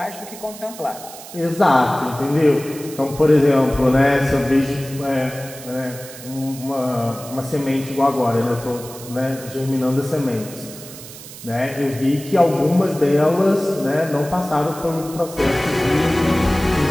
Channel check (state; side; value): noise; right; hiss, 15 dB below the sound